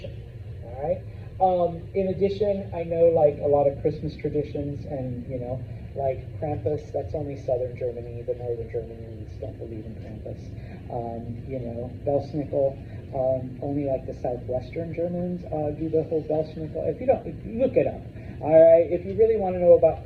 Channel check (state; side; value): identical; both; correlation 1.00